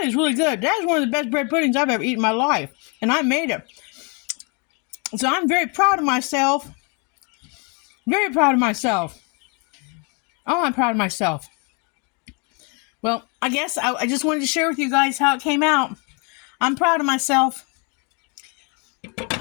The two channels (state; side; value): quieter; right; 34.4 dB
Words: is really good. That is one of the best bread puddings I've ever eaten in my life. And I made it. So I'm very proud of myself. Very proud of myself. Oh, I'm proud of myself. Well, I guess I just wanted to share with you guys how it came out. I'm proud of myself.